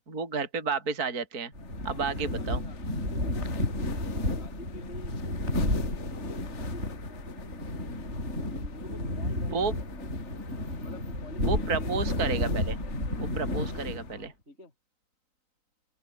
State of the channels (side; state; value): left; late; 3.9 ms